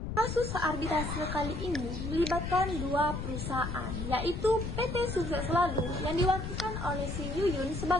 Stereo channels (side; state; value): left; noise; rumble, 5 dB below the sound